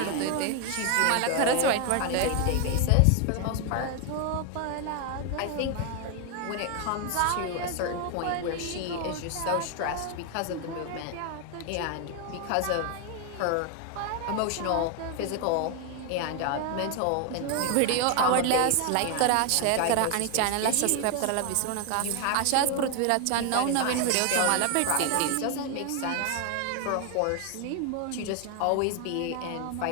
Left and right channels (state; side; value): different; both; correlation 0.01